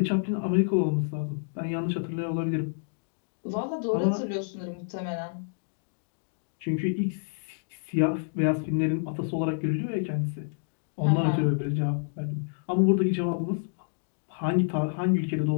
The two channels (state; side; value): silent; right; digital silence